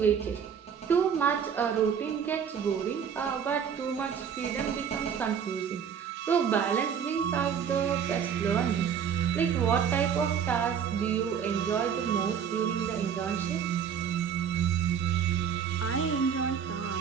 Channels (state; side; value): quieter; left; 7.6 dB